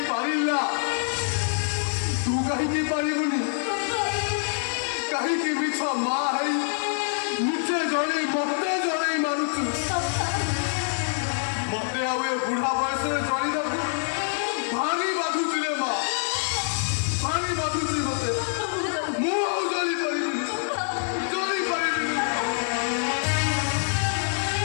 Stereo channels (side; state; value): right; silent; 61 dB below the other